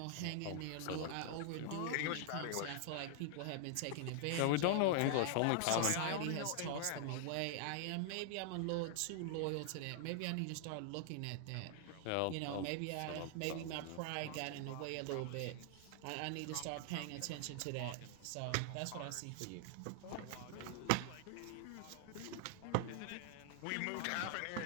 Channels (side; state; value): both; different; correlation 0.00